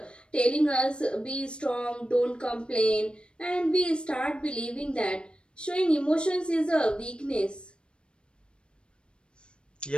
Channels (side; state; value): right; late; 0.055 ms